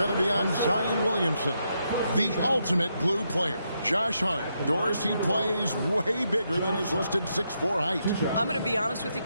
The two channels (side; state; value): both; inverted; correlation -0.80